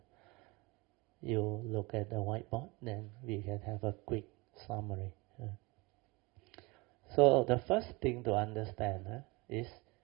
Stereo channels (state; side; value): quieter; left; 25.2 dB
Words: You look at the whiteboard, then we can have a quick summary. So the first thing to understand is